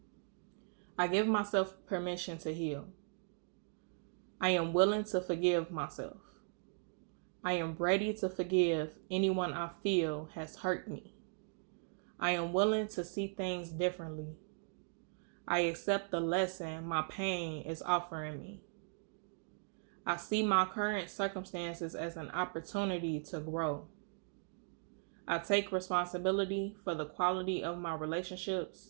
I give myself permission to heal. I am willing to forgive myself. I am ready to forgive anyone I feel has hurt me. I am willing to see things differently. I accept the lesson my pain is offering me. I see my current circumstances as an opportunity to grow. I take responsibility for the quality of my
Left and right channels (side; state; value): left; silent; 52 dB below the other